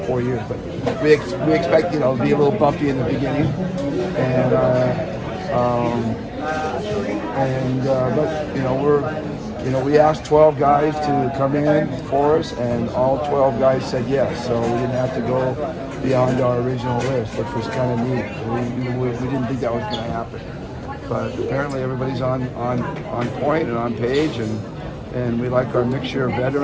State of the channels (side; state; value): both; identical; correlation 1.00